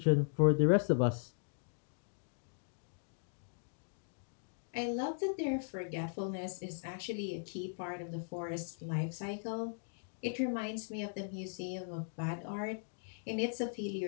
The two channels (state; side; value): silent; right; digital silence